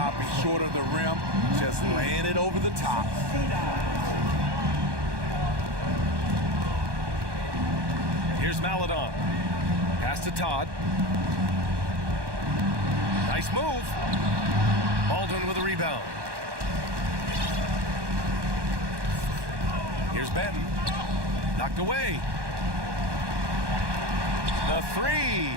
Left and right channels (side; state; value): left; late; 1.2 ms